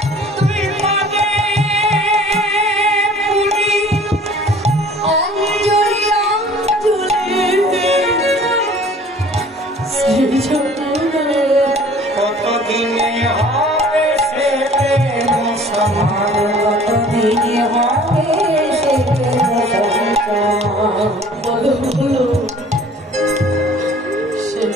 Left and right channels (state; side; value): normal; both; correlation 0.50